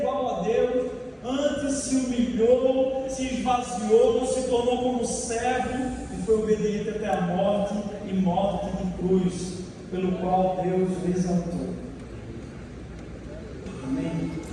a Deus, antes se humilhou, se esvaziou, não se tornou como servo e foi obediente até a morte e morte de cruz, pelo qual Deus o exaltou. Amém?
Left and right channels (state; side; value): identical; both; correlation 1.00